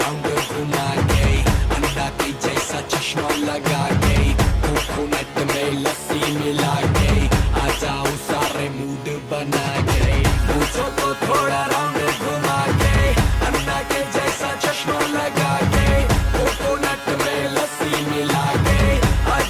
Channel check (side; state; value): both; identical; correlation 1.00